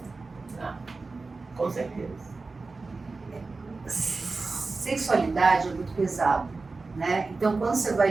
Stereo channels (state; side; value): quieter; left; 3.9 dB